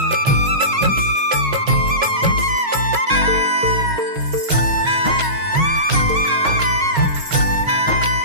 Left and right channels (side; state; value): left; late; 6.3 ms